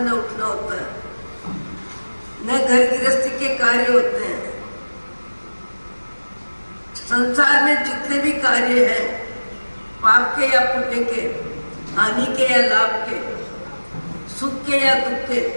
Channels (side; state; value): both; inverted; correlation -1.00